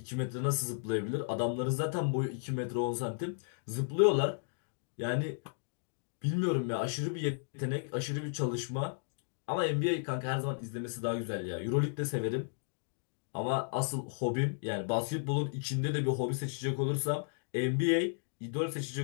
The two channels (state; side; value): silent; right; digital silence